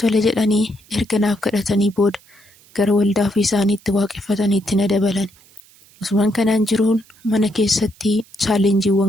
jedhanii erga naaf kadhatanii booda gara waldaa ofii isaaniitti waaqeffataniitti na dabalan. Osumaan kanaan jiruun mana keessatti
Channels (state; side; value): noise; right; hiss, 28 dB below the sound